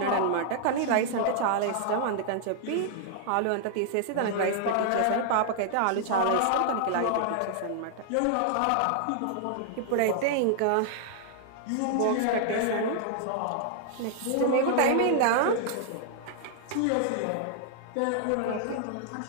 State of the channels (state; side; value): different; both; correlation -0.01